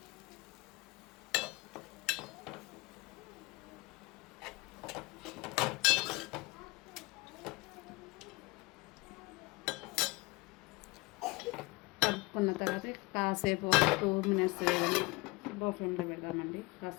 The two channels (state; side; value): quieter; right; 23.7 dB